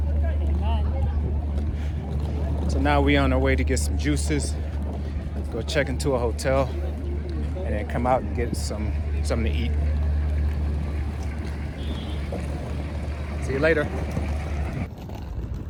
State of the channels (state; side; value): identical; both; correlation 1.00